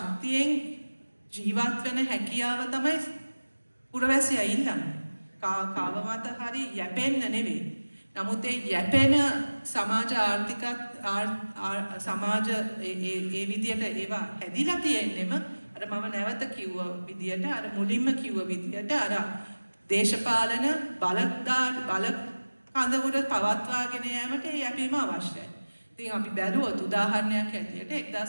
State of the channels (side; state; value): both; inverted; correlation -1.00